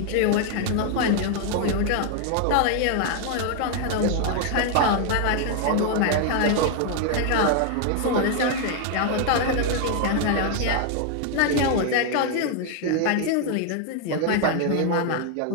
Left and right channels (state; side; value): different; both; correlation 0.00